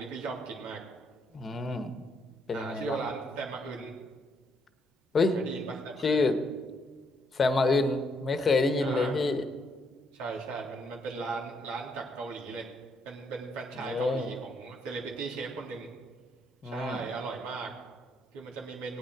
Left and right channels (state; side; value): normal; both; correlation 0.74